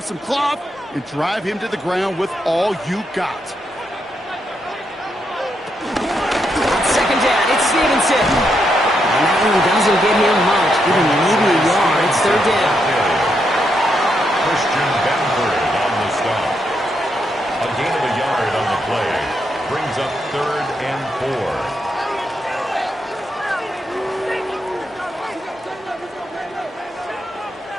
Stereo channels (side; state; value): both; normal; correlation 0.80